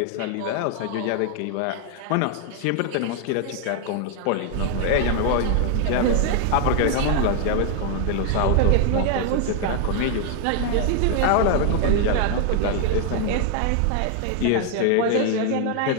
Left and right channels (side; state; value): both; different; correlation 0.00